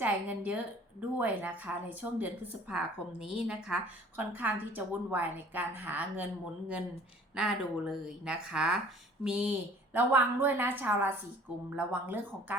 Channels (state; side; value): normal; both; correlation 0.51